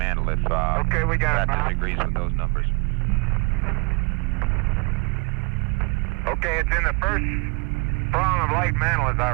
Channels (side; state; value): left; quieter; 30.1 dB